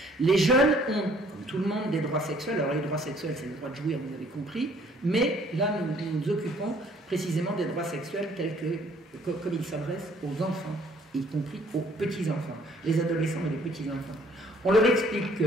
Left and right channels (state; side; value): normal; both; correlation 0.60